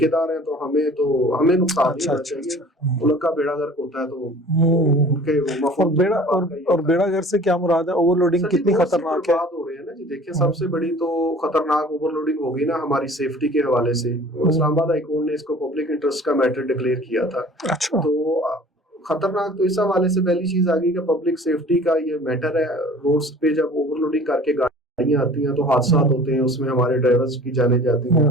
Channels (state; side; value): normal; both; correlation 0.47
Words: हैं तो हमें नुकसान नहीं होना चाहिए। मुल्क का बेड़ा गर्क होता है तो उनके और बेड़ा गर्क से क्या मुराद है? ओवरलोडिंग कितनी खतरनाक है? बात हो रही है ना जी, देखिए सबसे बड़ी तो खतरनाक ओवरलोडिंग होगी ना हमारी सेफ्टी के हवाले से। इस्लामाबाद हाई कोर्ट ने इसको पब्लिक इंटरेस्ट का मैटर डिक्लेयर किया था। अच्छा। तो खतरनाक तो इस हवाले से पहली चीज आ गई कि पब्लिक सेफ्टी का ये मैटर है। रोड्स पे जब ओवरलोडिंग करके गाड़ियां आती हैं तो हादसा होते हैं, उसमें हमारे ड्राइवर्स की जाने जाती हैं।